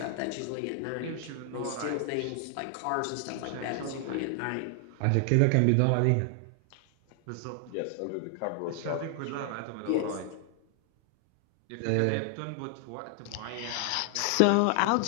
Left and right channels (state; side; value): different; both; correlation 0.00